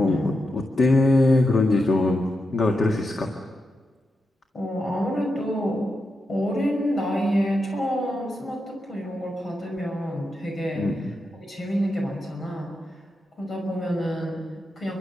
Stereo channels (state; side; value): normal; both; correlation 0.87